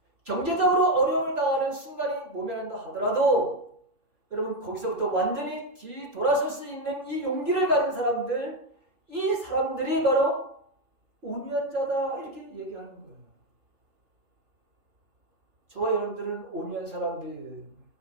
경제적으로 어려움을 당하는 순간이 모면한다 하더라도 여러분 거기서부터 완전히 뒤돌아설 수 있는 이 용기를 가진 사람들, 이 사람들이 바로 온유한 자다 이렇게 얘기하는 거예요. 저와 여러분들은 온유한 사람들이 되는 거예요.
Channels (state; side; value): late; left; 3.0 ms